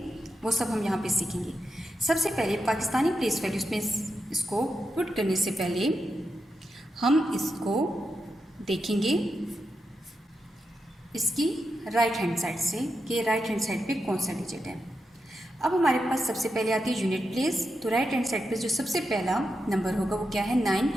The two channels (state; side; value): normal; both; correlation 0.87